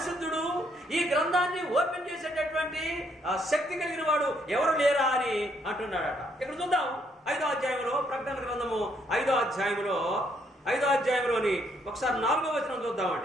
ఈ గ్రంథాన్ని ఓపెన్ చేసేటటువంటి శక్తి కలిగిన వాడు ఎవరు లేరా అని అంటున్నాడట. ఇక్కడ చూద్దాం 5వ అధ్యాయంలో, ప్రకటన గ్రంథము 5వ అధ్యాయంలోని ఒకసారి 4వ వచనం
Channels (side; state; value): both; normal; correlation 0.71